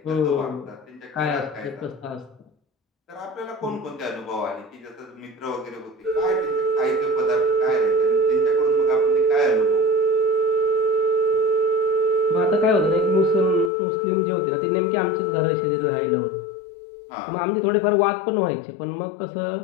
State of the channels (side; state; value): right; drops out; at 13.7 s